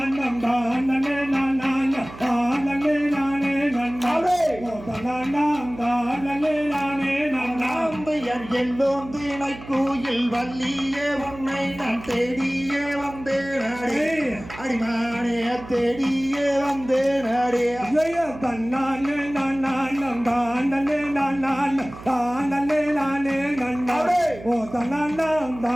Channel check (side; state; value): right; noise; hum, 15 dB below the sound